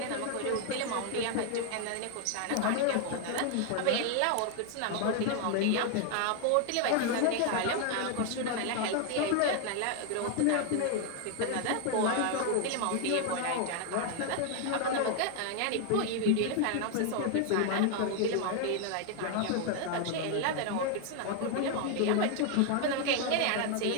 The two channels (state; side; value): different; both; correlation 0.00